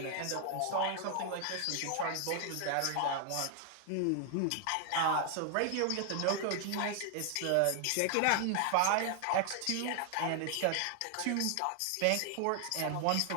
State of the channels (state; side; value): different; both; correlation 0.00